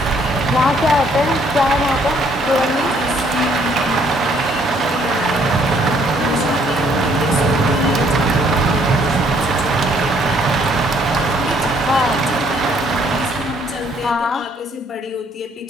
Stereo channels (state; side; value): normal; both; correlation 0.65